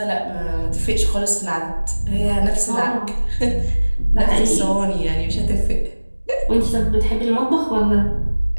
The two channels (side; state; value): both; inverted; correlation -1.00